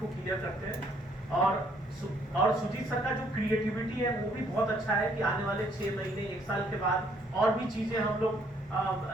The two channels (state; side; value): normal; both; correlation 0.66